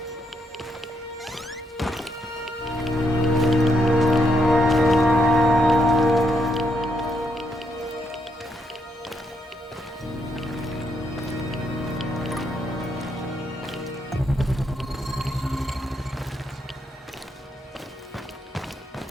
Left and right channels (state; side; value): normal; both; correlation 0.77